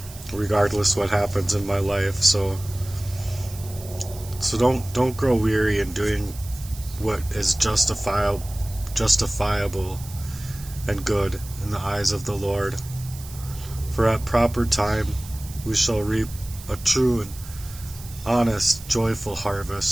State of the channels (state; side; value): noise; right; hiss, 16 dB below the sound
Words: regardless what happens in my life. So don't grow weary in doing what is justifiable and good in the eyes of the Lord. For at proper time we shall reap a true and honest, joyful